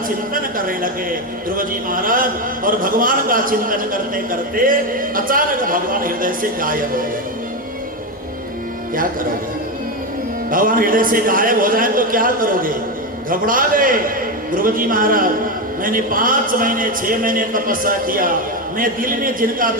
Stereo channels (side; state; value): both; normal; correlation 0.12